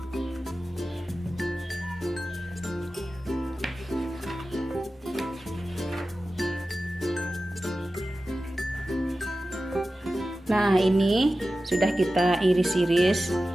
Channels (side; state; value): both; normal; correlation 0.94